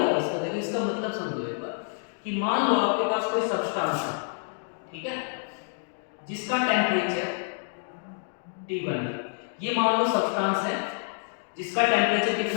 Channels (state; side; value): silent; right; digital silence